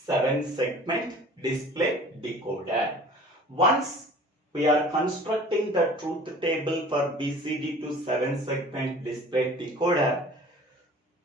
segment display decoder. Once we are constructing the truth table for BCD to 7 segment display decoder,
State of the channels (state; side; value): normal; both; correlation 0.46